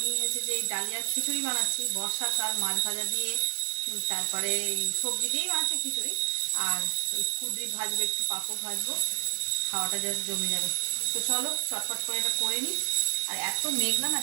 হচ্ছে যে এই ডালিয়ার খিচুড়ি বানাচ্ছি, বর্ষাকাল মাছ ভাজা দিয়ে, তারপরে সবজি দিয়েই বানাচ্ছি খিচুড়ি। আর ওই কুদরি ভাজবো, একটু পাঁপড় ভাজবো, খাওয়াটা জাস্ট জমে যাবে। তো চলো চটপট করে এটা করে নিই। আর এত মেঘলা না,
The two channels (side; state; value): left; silent; digital silence